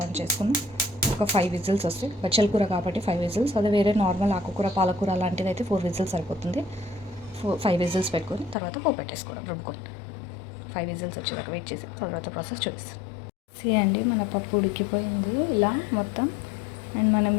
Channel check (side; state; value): right; drops out; at 8.6 s